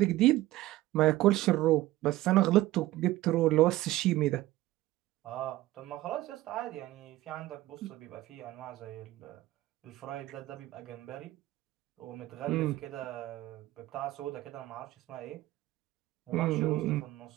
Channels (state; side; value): quieter; left; 16.6 dB